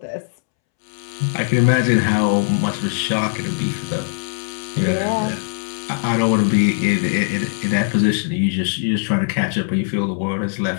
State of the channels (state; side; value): silent; right; 66 dB below the other